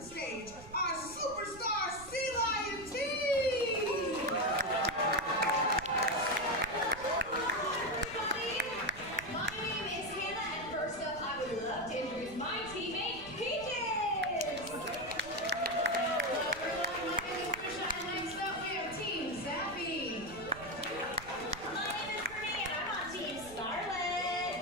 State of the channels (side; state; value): right; noise; rumble, 17 dB below the sound